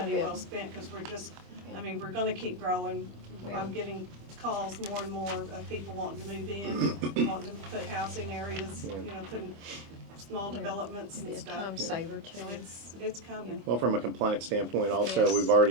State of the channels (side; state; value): left; late; 25 ms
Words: well spent, because we're just, I mean, we're gonna keep growing. Yeah. I'm getting calls more and more of people wanting to move in, wanting to put housing areas, you know, putting small Yeah. developments Be and a stuff. time saver too. So it's coming. Well, from a compliance standpoint also, Yes. we've